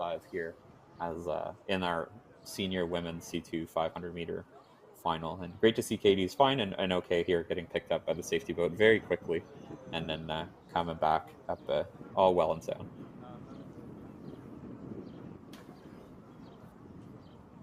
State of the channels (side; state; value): both; identical; correlation 1.00